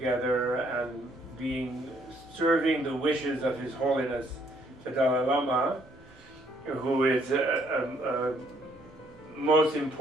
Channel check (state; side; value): normal; both; correlation 0.67